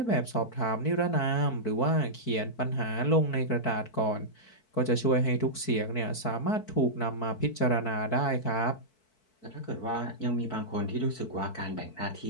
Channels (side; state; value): right; late; 4.6 ms